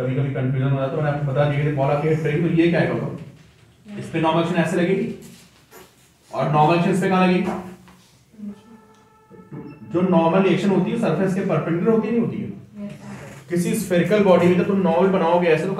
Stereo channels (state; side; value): identical; both; correlation 1.00